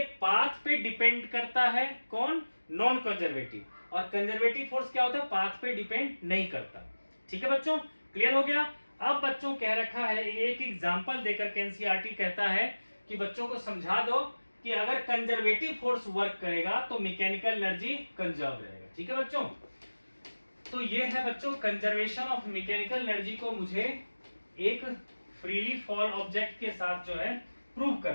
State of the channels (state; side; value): inverted; both; correlation -1.00